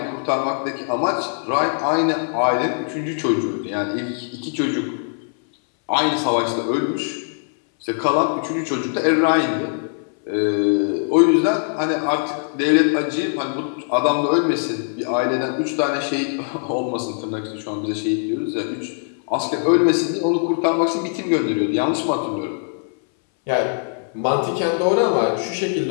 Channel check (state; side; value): silent; right; 63 dB below the other